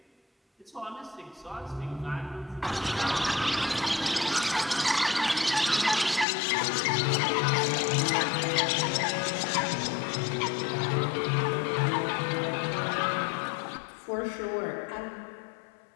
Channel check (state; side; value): drops out; right; at 6.2 s